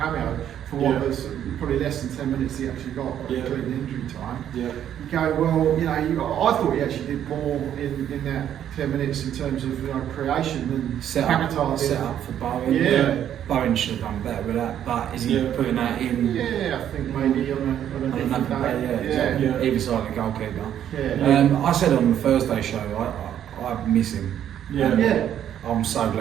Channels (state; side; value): quieter; left; 10.2 dB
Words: for what Yeah. was probably less than 10 minutes he actually got, Yeah. including injury time. Yeah. You go, well, you know, I thought he actually did more in that 10 minutes in terms of creation than Set Paquetá did. up for Bowen. Yeah. Bowen should have done better with that, but is he Yeah. putting that in? Yeah, I think maybe on a On different another day. day, Yeah. exactly. Either side of the goalkeeper. Yeah. I said on the Thursday show, I miss him. Yeah. Yeah. I'm so